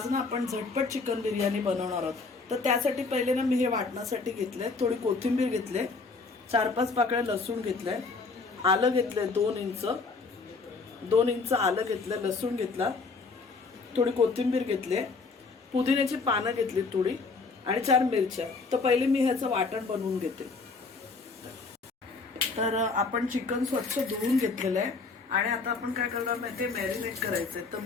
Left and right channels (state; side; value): quieter; right; 4.2 dB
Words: ना आपण झटपट चिकन बिर्याणी बनवणार आहोत. तर त्यासाठी पहिले ना मी हे वाटण्यासाठी घेतले, थोडी कोथिंबीर घेतले, 4-5 पाकळ्या लसूण घेतले, आलं घेतले 2 इंच आलं घेतलं, लसूण घेतला, थोडी कोथिंबीर घेतले, पुदिन्याची पानं घेतली थोडी आणि 4 मिरच्या. तर पहिले मी ह्याचं वाटण बनवून घेते. तर आपण चिकन स्वच्छ धुवून घेतलेलं आहे आणि आता आपण काय करणार माहिती आहे, मॅरिनेट करायचंय. तर